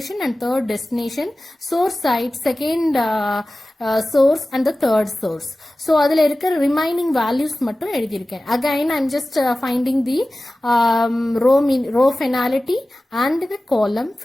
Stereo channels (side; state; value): both; normal; correlation 0.96